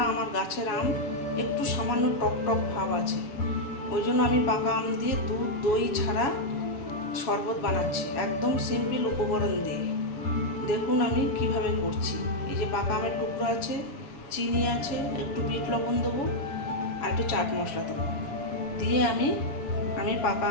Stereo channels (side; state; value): right; late; 7.2 ms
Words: আমার গাছের আম, একটু সামান্য টক টক ভাব আছে, ওই জন্য আমি পাকা আম দিয়ে দুধ দই ছাড়া শরবত বানাচ্ছি, একদম সিম্পল উপকরণ দিয়ে। দেখুন আমি কিভাবে করছি। এই যে পাকা আমের টুকরো আছে, চিনি আছে, একটু বিট লবণ দেবো আর একটু চাট মশলা দেবো, দিয়ে আমি পাকা